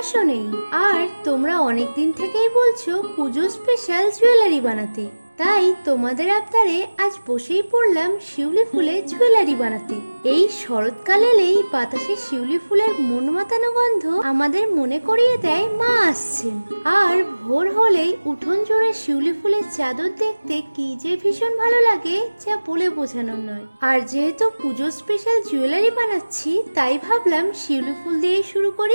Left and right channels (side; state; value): both; inverted; correlation -1.00